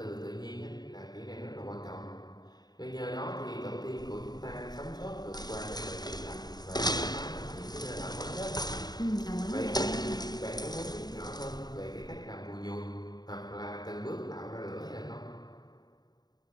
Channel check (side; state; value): right; late; 0.20 ms